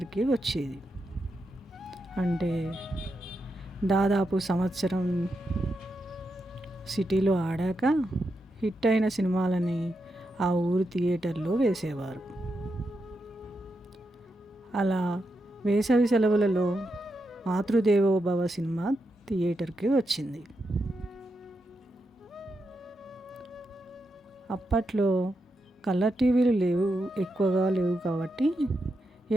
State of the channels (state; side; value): normal; both; correlation 0.86